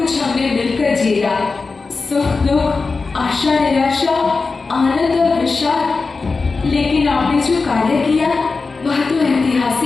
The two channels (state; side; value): quieter; right; 4.2 dB